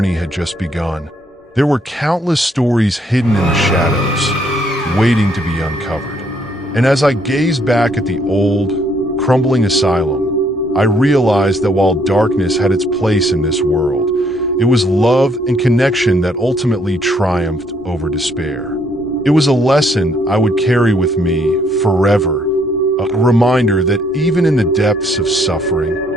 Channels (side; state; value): both; normal; correlation 0.68